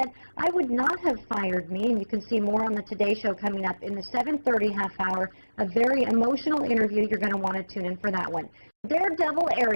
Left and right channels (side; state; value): both; inverted; correlation -1.00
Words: "I would not have fired me," and you can see more on the Today Show coming up in the 7:30 half hour. A very emotional interview. You're going to want to tune in for that one. Daredevil